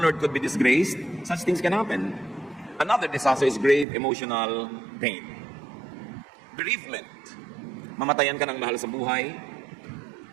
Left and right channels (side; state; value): left; drops out; at 3.9 s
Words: could be disgraced. Such things can happen. Another disaster is grave emotional pain. Bereavement. Mamatayan ka ng mahal sa buhay.